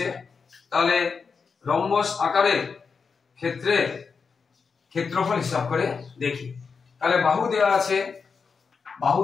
তাহলে রম্বস আকারের ক্ষেত্রে ক্ষেত্রফল হিসাব করে দেখি। তাহলে বাহু দেওয়া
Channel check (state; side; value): quieter; right; 5.4 dB